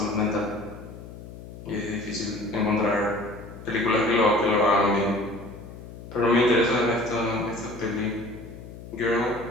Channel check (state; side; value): noise; left; hum, 14 dB below the sound